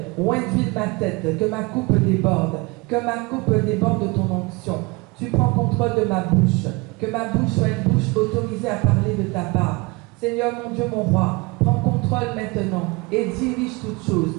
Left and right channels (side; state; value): left; quieter; 25.8 dB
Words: ointe ma tête, que ma coupe déborde de ton onction. Tu prends contrôle de ma bouche, que ma bouche soit une bouche autorisée à parler de ta part. Seigneur mon Dieu, mon roi, prends contrôle maintenant et dirige toutes choses,